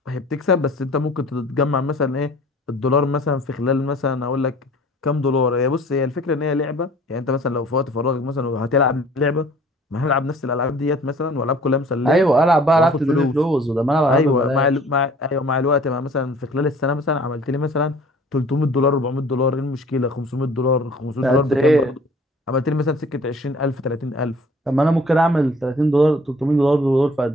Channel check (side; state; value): both; normal; correlation 0.51